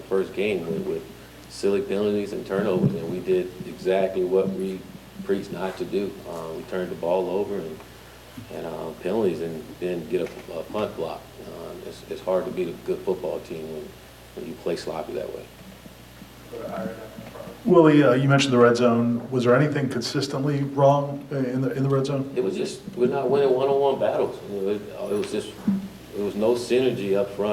first game with silly penalties and turnovers, and we did exactly what we preached not to do. We turned the ball over and penalties, and then get a punt block. It's hard to beat a good football team when you play sloppy that way. Willie, you mentioned the red zone. Was there anything consistently wrong in the red zone? It was just we're not winning one-on-one battles. It was no synergy up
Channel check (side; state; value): both; identical; correlation 1.00